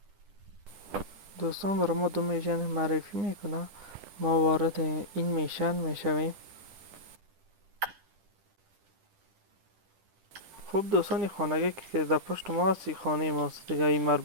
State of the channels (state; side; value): late; left; 9.9 ms